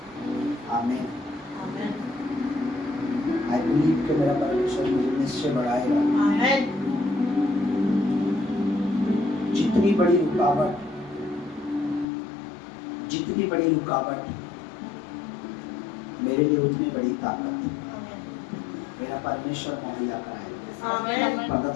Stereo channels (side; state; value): right; drops out; at 12.1 s